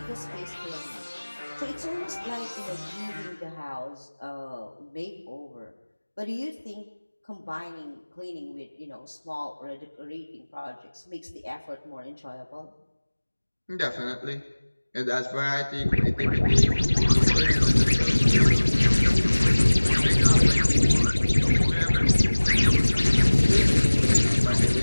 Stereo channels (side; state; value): both; inverted; correlation -1.00